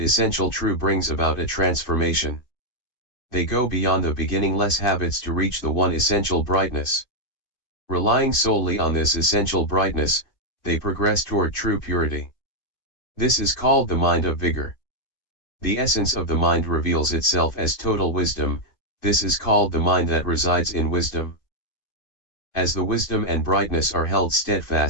essential true brings about a transformation. They go beyond the beginningless habits to reach the one essential brightness. Relying solely on this essential brightness, they progress toward true purity. This is called the mind of vigor. The essence of the mind reveals itself as total wisdom, this is called the mind that resides in wisdom. As the wisdom and brightness are held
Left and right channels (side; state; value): right; late; 2.5 ms